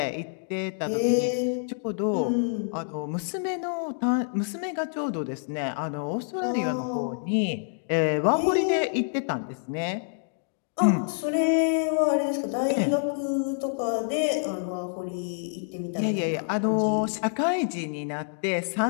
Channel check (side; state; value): right; silent; digital silence